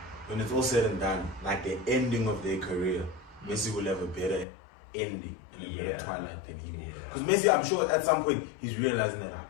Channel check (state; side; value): drops out; right; at 4.5 s